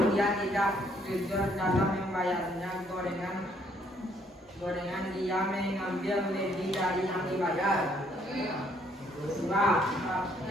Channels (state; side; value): normal; both; correlation 0.67